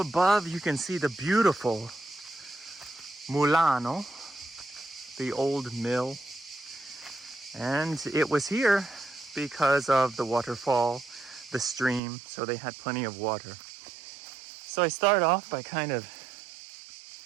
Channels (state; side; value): drops out; left; at 12.0 s